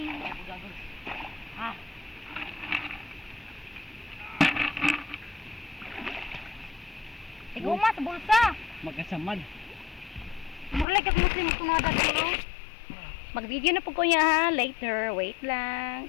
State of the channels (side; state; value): right; drops out; at 10.9 s